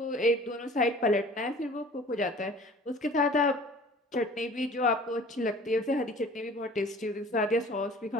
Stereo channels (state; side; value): normal; both; correlation 0.47